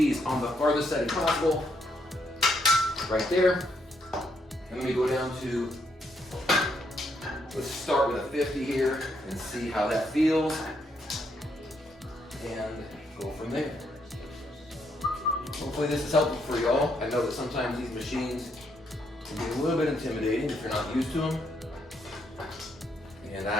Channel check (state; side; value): normal; both; correlation 0.75